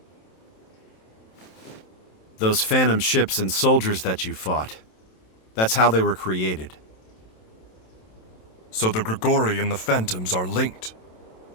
Those phantom ships and soldiers that you fought, that's how they were created. So the Grigori and the Phantoms are linked.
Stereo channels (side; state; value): right; late; 27 ms